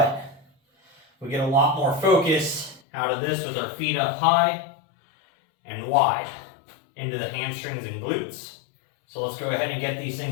we get a lot more focus out of this with our feet up high and wide into the hamstrings and glutes. So let's go ahead and get these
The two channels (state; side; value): drops out; right; at 2.8 s